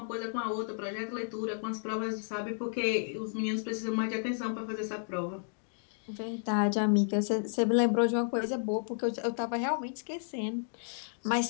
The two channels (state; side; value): silent; right; digital silence